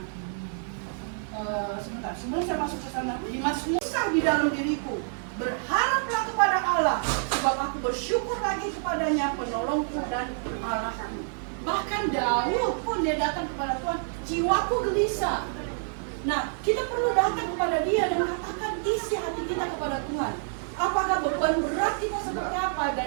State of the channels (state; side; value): silent; left; 60 dB below the other